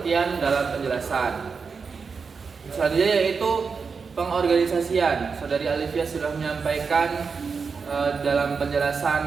dalam penjelasan. Selanjutnya yaitu pengorganisasian. Saudari Alfia sudah menyampaikan dalam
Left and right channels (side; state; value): left; quieter; 5.3 dB